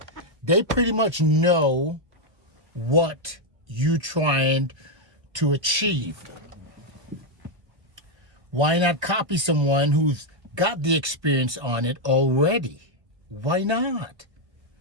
They pretty much know what you're trying to achieve. Why not copy someone who's got the experience on it already? Why not?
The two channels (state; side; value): late; left; 1.6 ms